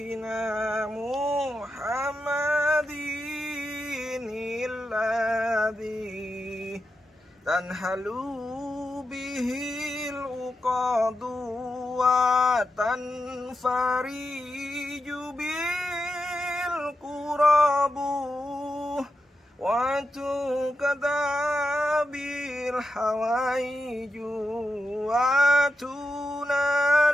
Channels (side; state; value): both; normal; correlation 0.88